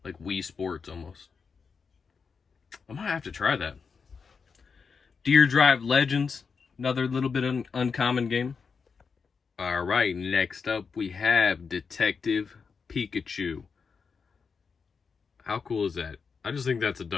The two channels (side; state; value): right; quieter; 5.5 dB